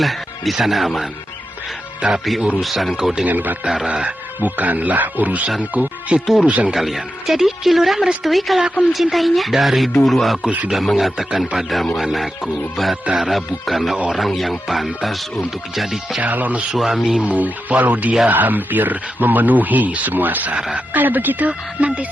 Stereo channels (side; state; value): both; normal; correlation 0.88